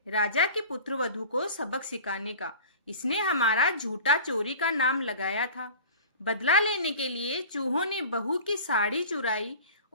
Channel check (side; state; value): both; inverted; correlation -0.39